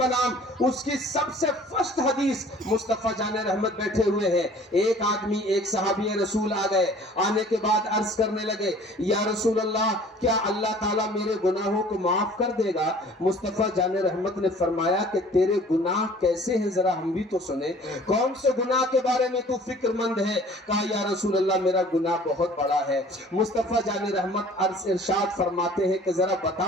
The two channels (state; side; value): normal; both; correlation 0.50